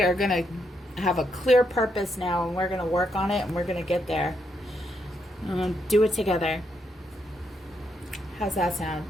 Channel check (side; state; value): both; normal; correlation 0.79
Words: are going to have a clear purpose now, and we're going to work on it, and we're going to get there. Do it together. How's that sound?